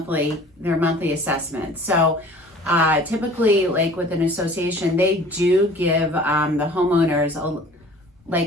assessment. So typically, like with an association, they do give the homeowners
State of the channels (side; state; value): both; normal; correlation 0.48